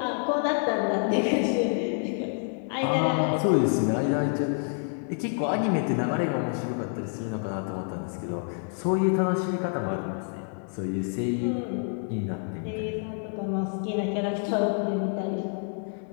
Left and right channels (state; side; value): silent; right; 57 dB below the other